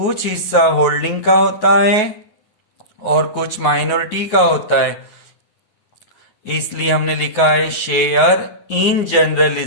हिस्सा होल्डिंग का होता है और कुछ माइनॉरिटी का होता है, इसलिए हमने लिखा है share in general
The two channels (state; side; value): late; right; 9.4 ms